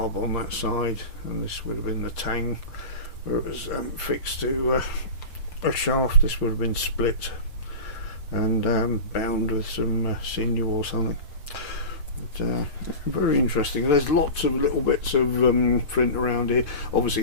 on that side, and this would have been the tang where it was fixed to a shaft. This would have been split and bound with some sinew or something. But very interesting. There's lots of little bits of flint around here.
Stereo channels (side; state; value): right; late; 6.7 ms